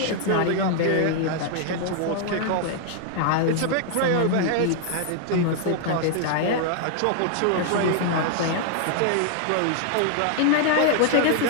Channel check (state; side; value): different; both; correlation -0.01